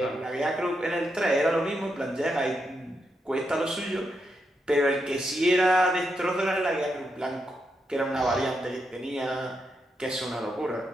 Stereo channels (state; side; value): normal; both; correlation 0.83